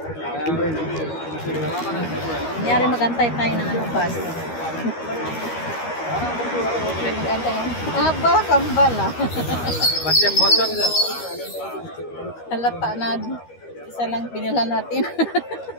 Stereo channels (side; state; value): right; late; 13 ms